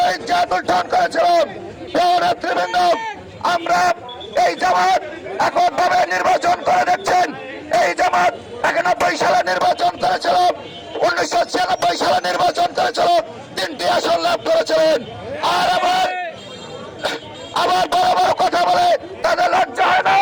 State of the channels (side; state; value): both; identical; correlation 1.00